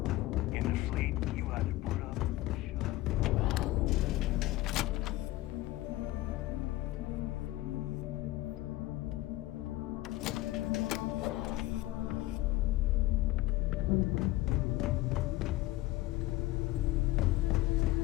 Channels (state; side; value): quieter; right; 17.6 dB